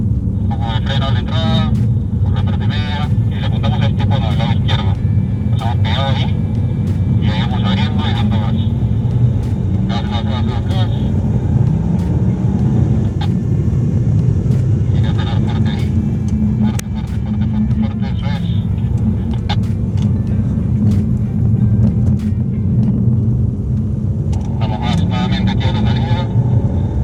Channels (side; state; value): both; identical; correlation 1.00